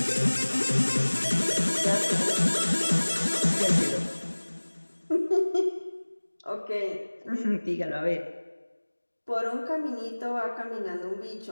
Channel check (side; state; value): both; inverted; correlation -1.00